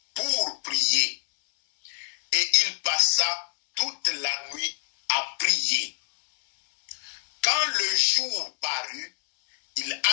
pour prier. Et il passa toute la nuit à prier. Quand le jour parut, il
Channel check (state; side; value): silent; right; 58 dB below the other